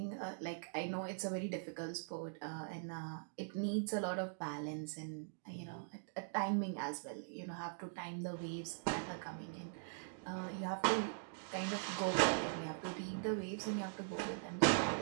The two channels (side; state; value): left; silent; digital silence